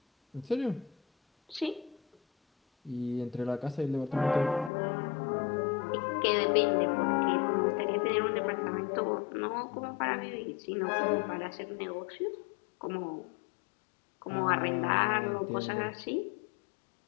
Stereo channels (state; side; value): drops out; right; at 4.7 s